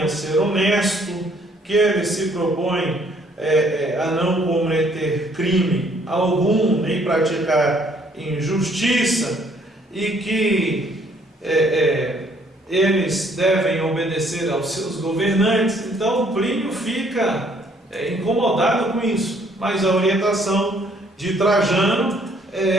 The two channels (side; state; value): both; normal; correlation 0.64